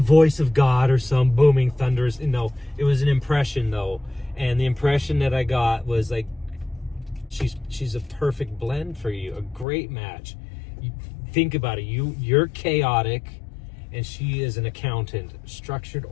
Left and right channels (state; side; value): drops out; right; at 9.7 s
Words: of God or some booming thunderous. No, it was an impression though, and the impression that I got was like, she's a perfect blend for you, a great match. You think about it. You're chaotic. And she is an accountant, structured,